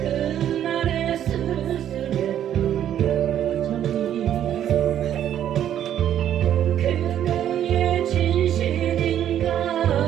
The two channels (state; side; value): quieter; left; 10.6 dB